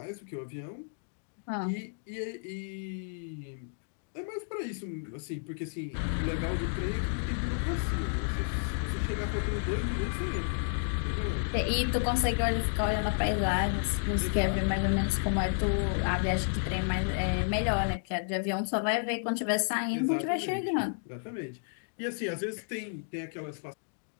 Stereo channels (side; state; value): right; silent; digital silence